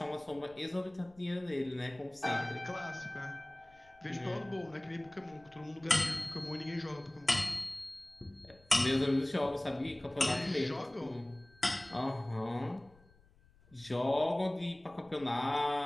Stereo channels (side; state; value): left; noise; rumble, 28 dB below the sound